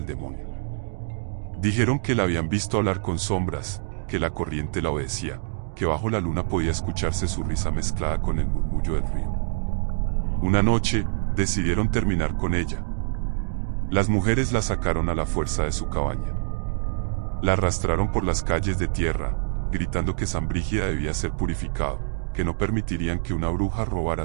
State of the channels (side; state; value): left; silent; digital silence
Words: demonio. Dijeron que la habían visto hablar con sombras, que la corriente la obedecía, que bajo la luna podía escucharse su risa mezclada con el murmullo del río. Una noche, decidieron terminar con ella. Las mujeres la sacaron a la fuerza de su cabaña. La arrastraron por las calles de tierra, gritando que San Brígida debía ser purificado, que no permitirían que una bruja robara